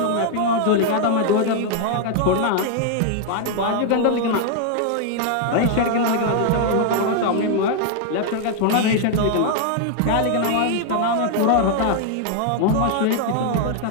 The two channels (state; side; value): different; both; correlation 0.00